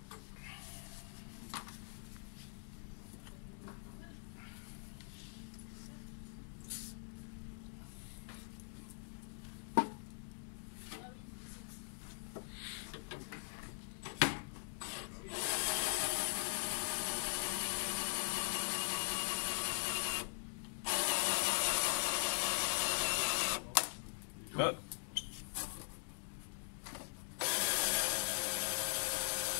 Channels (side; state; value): right; silent; digital silence